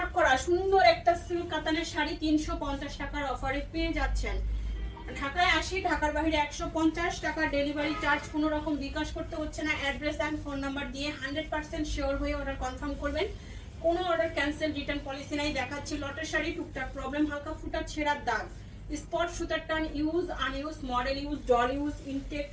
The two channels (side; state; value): both; identical; correlation 1.00